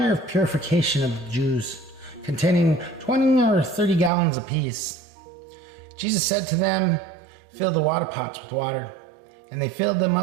of purification of the Jews, containing 20 or 30 gallons apiece. Jesus said to them, "Fill the water pots with water." And they filled them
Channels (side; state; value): left; drops out; at 4.1 s